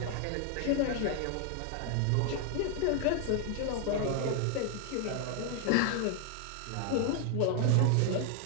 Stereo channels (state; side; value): different; both; correlation 0.00